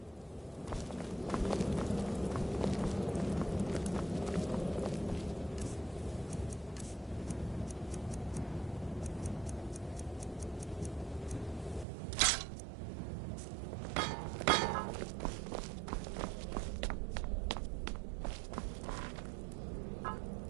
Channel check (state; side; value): drops out; left; at 11.9 s